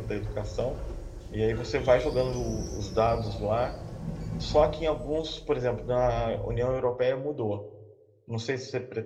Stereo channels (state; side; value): identical; both; correlation 1.00